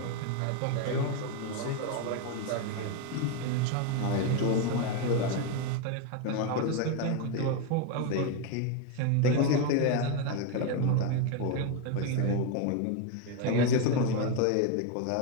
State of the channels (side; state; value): both; different; correlation 0.01